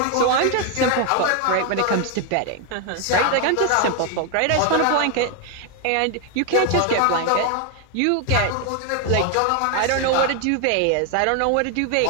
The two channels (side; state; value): both; different; correlation 0.01